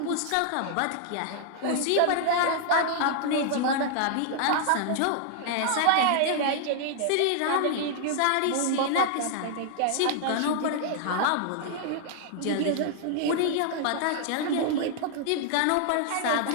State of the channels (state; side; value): different; both; correlation -0.01